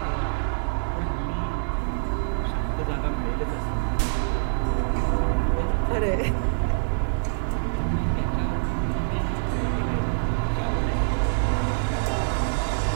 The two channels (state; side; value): silent; left; digital silence